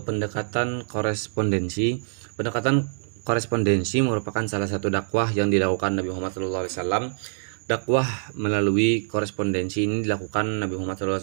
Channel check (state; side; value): silent; left; digital silence